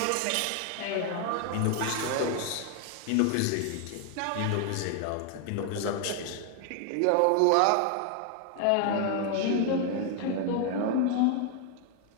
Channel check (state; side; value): different; both; correlation 0.00